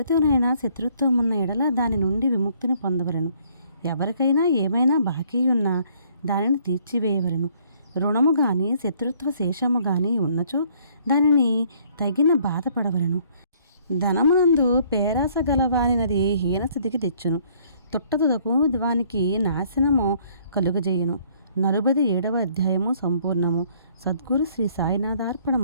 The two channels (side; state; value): both; inverted; correlation -0.62